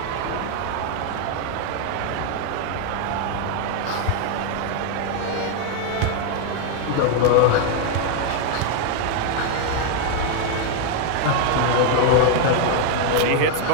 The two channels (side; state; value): both; different; correlation 0.01